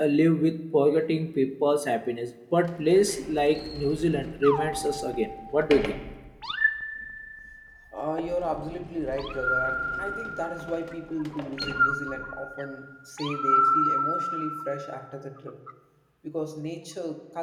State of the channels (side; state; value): both; identical; correlation 1.00